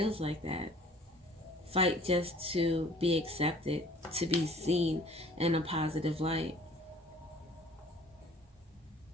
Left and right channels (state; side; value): normal; both; correlation 0.51